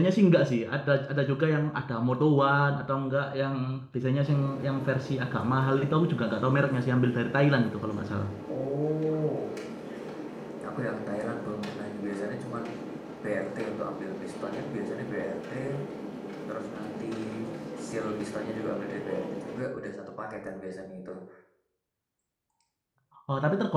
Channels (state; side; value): identical; both; correlation 1.00